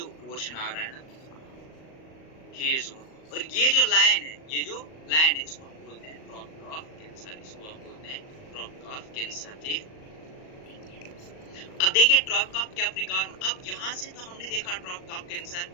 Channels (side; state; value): right; late; 38 ms